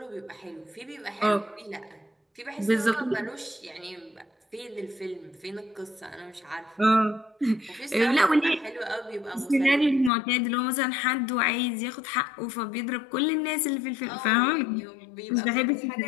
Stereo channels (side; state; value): right; drops out; at 10.1 s